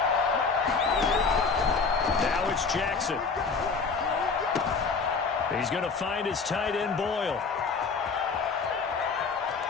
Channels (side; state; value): right; quieter; 4.9 dB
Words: Now it's Jackson. He's going to find his tight end, Boyle.